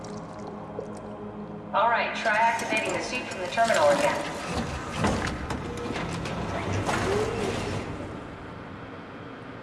Alright, try activating the suit from the terminal again.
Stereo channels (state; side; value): identical; both; correlation 1.00